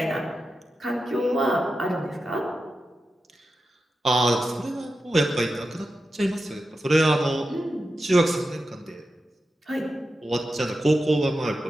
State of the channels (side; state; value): both; normal; correlation 0.91